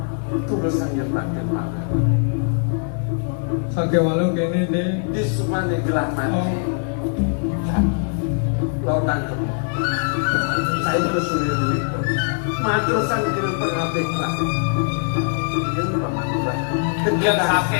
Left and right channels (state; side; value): silent; right; 58 dB below the other